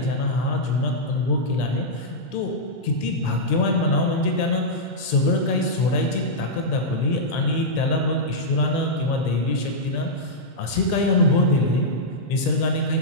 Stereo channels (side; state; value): right; late; 2.1 ms